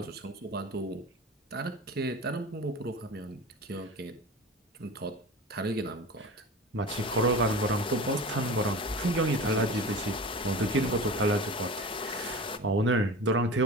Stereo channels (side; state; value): both; normal; correlation 0.33